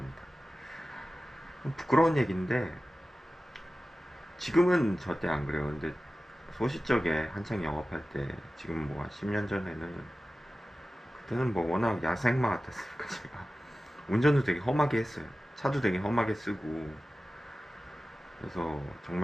부끄러운 얘기인데 지금은 절대 안 그래요. 근데 소시적에 한창 영업할 때, 지금 뭐 한 10년 전에는, 그때는 뭐 워낙 야생마 같았으니까 제가 운전도 되게 험하게 했어요. 차도 되게 험하게 쓰고, 그래서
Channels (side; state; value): both; normal; correlation 0.95